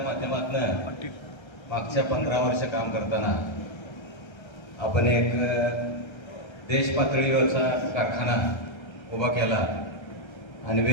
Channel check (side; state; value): right; late; 1.3 ms